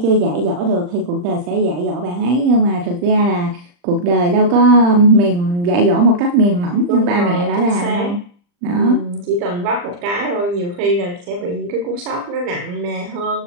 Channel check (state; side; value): late; left; 40 ms